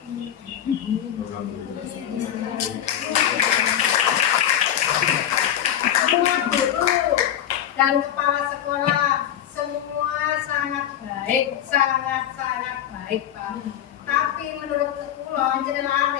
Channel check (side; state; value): right; quieter; 10.6 dB